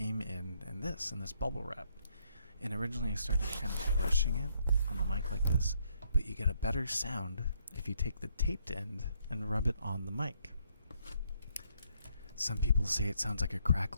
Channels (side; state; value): both; inverted; correlation -0.71